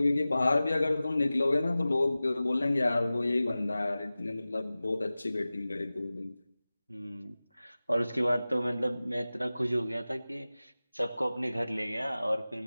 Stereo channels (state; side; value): inverted; both; correlation -0.97